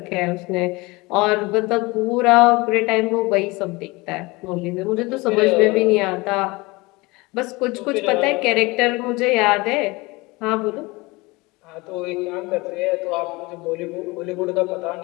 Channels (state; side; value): quieter; right; 23.7 dB